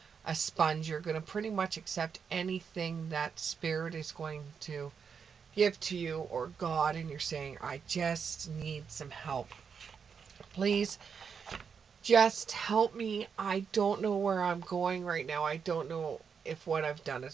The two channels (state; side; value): quieter; left; 6.4 dB